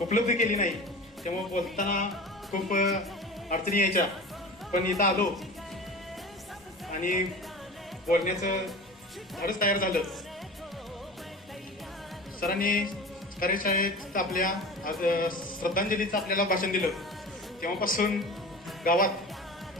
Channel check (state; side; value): normal; both; correlation 0.34